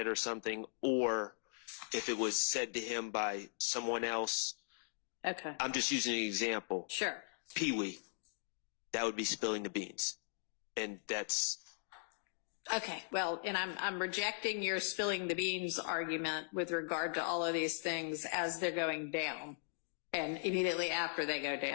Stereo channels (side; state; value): right; silent; digital silence